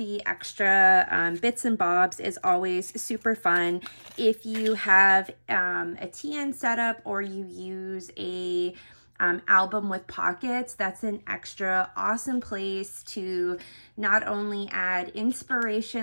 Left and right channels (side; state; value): both; inverted; correlation -1.00